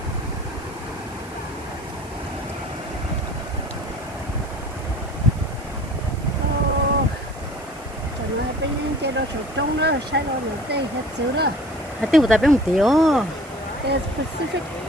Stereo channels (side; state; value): right; noise; hiss, 22 dB below the sound